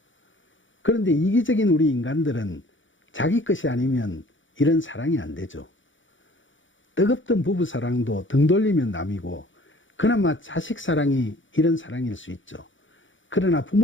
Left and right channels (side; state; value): right; late; 0.56 ms